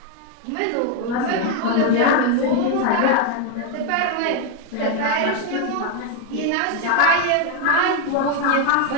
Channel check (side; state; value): both; different; correlation 0.01